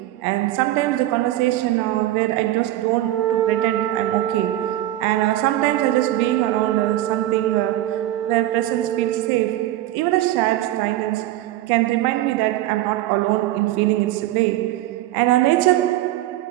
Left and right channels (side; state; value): left; quieter; 14.7 dB